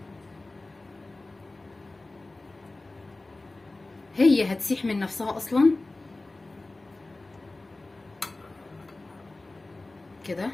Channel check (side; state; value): right; quieter; 3.0 dB